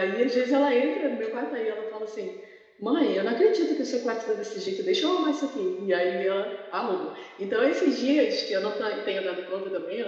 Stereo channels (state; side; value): identical; both; correlation 1.00